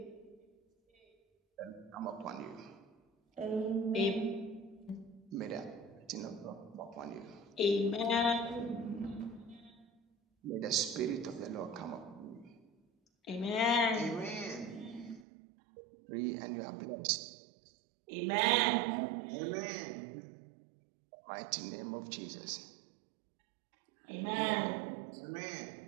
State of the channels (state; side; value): drops out; left; at 15.2 s